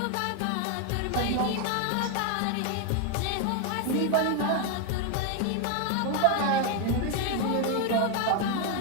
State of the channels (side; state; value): both; different; correlation 0.01